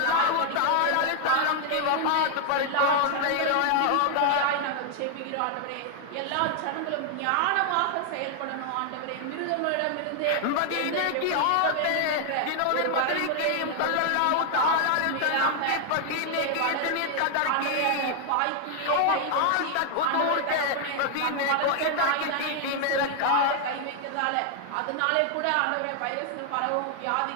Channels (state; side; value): different; both; correlation 0.00